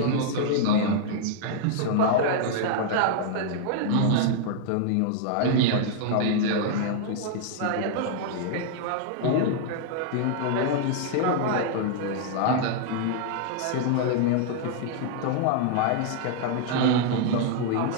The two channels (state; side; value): different; both; correlation -0.01